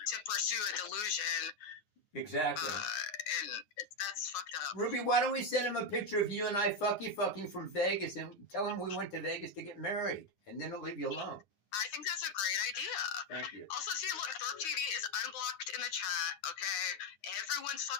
pursue a delusion. Exactly. And that's fucked up. Ruby, why don't we send him a picture of you and I fucking from Vegas and tell him we went to Vegas to get married, and then he'll leave you alone. I think that's a great idea. Thank you. Also, see, look, Thorpe TV is unblocked in the chat, okay? Everyone's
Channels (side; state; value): right; late; 9.6 ms